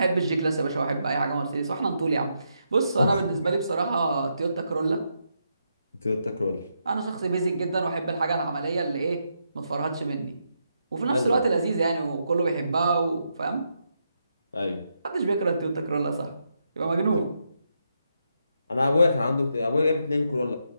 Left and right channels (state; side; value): inverted; both; correlation -0.81